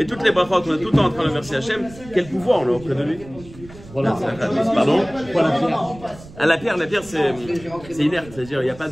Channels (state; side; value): noise; right; rumble, 19 dB below the sound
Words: toutes les brachot, on est tout le temps en train de remercier Hachem. Quel pouvoir on a auprès de lui? Pardon? Ah, la pierre c'est inerte, c'est-à-dire il n'y a pas